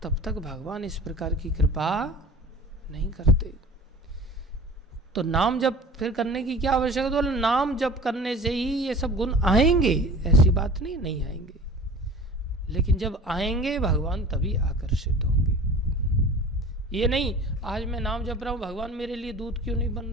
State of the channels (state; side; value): normal; both; correlation 0.41